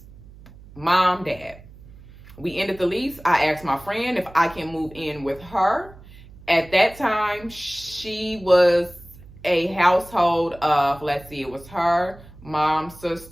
mom, dad. We ended the lease. I asked my friend if I can move in with her. At that time, she was a household of, it was her, mom,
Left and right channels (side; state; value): right; noise; hum, 20 dB below the sound